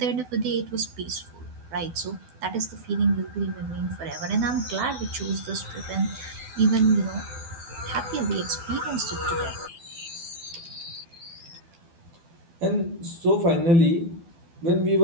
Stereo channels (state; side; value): late; left; 12 ms